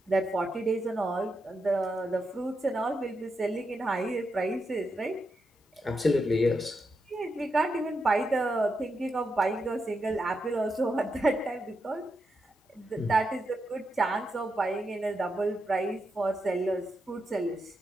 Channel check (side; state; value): both; normal; correlation 0.85